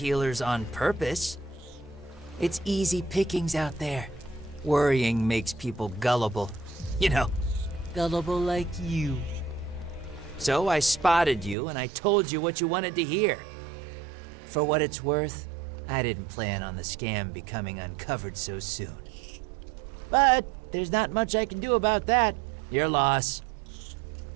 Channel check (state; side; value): drops out; left; at 11.6 s